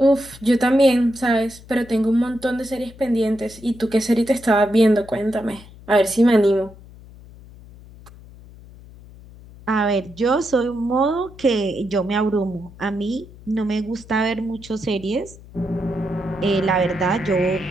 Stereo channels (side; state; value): left; noise; hum, 20 dB below the sound